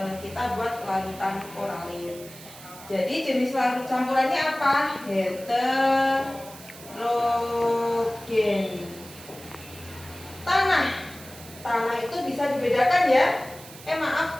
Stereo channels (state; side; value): noise; right; hiss, 17 dB below the sound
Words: kita buat larutan oralit. Jadi jenis larut campurannya apa? Heterogen. Tanah itu bisa dibedakan ya.